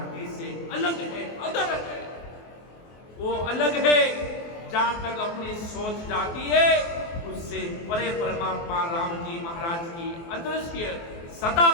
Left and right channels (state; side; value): late; right; 24 ms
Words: से अलग है, अदर है। वो अलग है, जहां तक अपनी सोच जाती है उससे परे परमात्मा राम जी महाराज की अदृश्य सदा